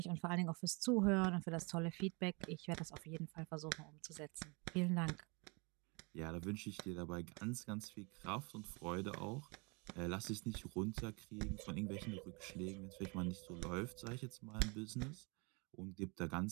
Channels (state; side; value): quieter; left; 30.0 dB